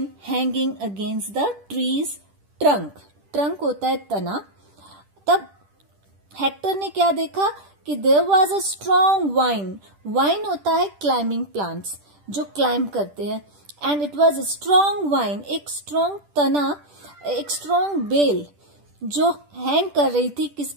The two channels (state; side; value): late; left; 10 ms